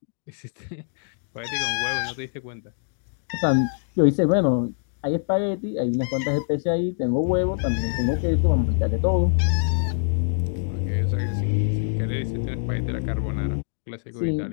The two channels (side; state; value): right; silent; digital silence